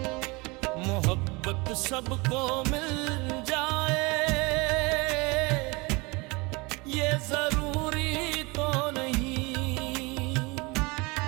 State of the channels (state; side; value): quieter; left; 26.1 dB